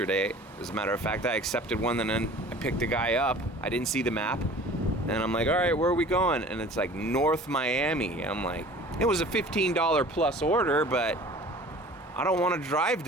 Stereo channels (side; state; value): both; normal; correlation 0.45